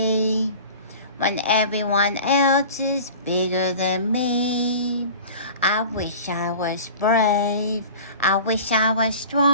when everyone else is bigger than me. I wish I was brave. I wish I was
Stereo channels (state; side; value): inverted; both; correlation -0.40